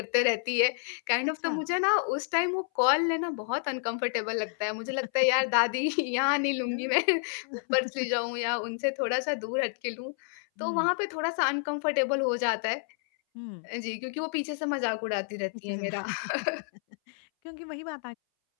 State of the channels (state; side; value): silent; right; 58 dB below the other